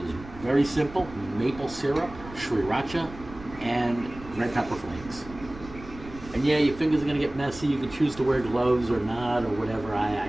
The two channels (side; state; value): right; noise; rumble, 16 dB below the sound